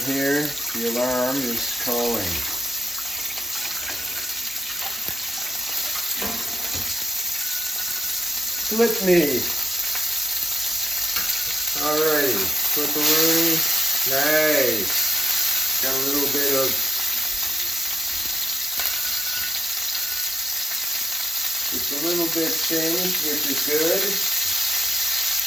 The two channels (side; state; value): both; normal; correlation 0.91